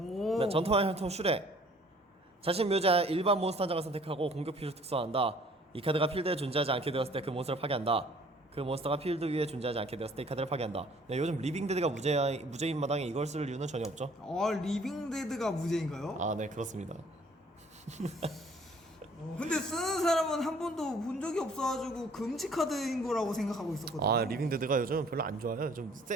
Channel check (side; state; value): both; normal; correlation 0.56